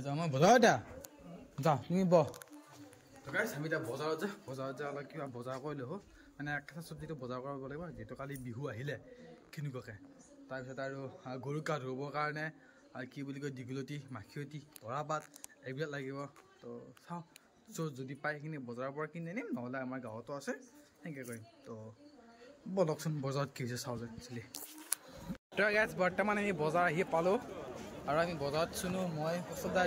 যাওঁ মই বজাৰত যা তুমি বহ গাইছ আমি এতিয়া বজাৰত যা অলপ কিবা বজাৰ কৰি ল'ব মানে কেঁচা চব্জিটো বজাৰ কৰিব লাগিব যিহেতু কালি বিহু আহিলে কেনেকুৱাকৈ তাৰপিছত আৰু গৰুক গা ধুবৰ কাৰণে আৰু কি বুলি কয় দীঘলতি মাখিয়তী তৰাপাত এইবিলাক লাগিব তো চাওঁ যদি পাই সেইখিনি বজাৰৰ পৰা কিনি আনিম নহ'লে আমাৰ গাঁৱতো আছে সেনেকৈ কৰিম তো বলকচোন বজাৰত কি হৈছে চাওঁ যে একচুৱেলি তো গাইছ বৰ্তমান আমি বজাৰ আহি পালোঁ আৰু আমি বজাৰত চুনো মই ওচৰতে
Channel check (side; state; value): both; identical; correlation 1.00